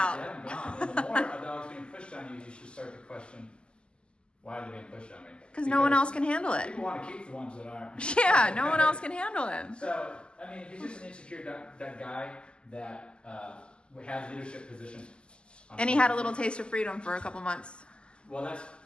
Get him gone. And the more a dog's being pushed on you, you should start to question, why are they being pushed on me? Because no one else can handle it. People want to keep the ones that aren't. Yeah, no one else can handle him. So, I mean, he's just an insecure that guy that has leadership positions. And he had a little taste of freedom for a couple months. Well,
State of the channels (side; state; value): right; late; 0.051 ms